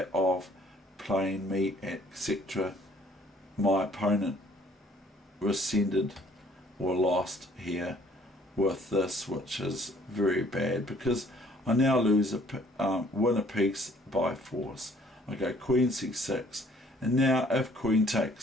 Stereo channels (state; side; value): normal; both; correlation 0.59